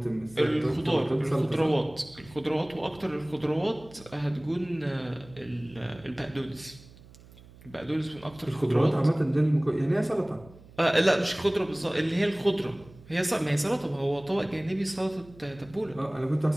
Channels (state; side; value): noise; right; hum, 22 dB below the sound